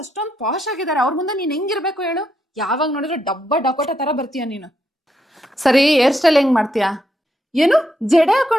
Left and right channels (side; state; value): both; normal; correlation 0.80